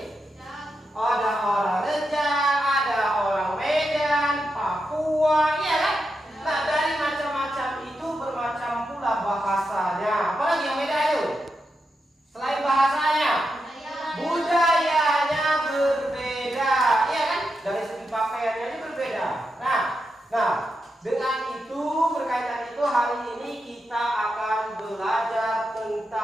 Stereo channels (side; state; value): both; normal; correlation 0.87